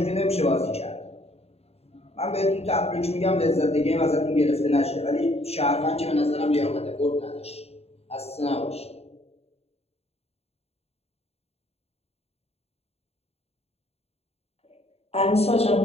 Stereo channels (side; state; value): right; late; 0.30 ms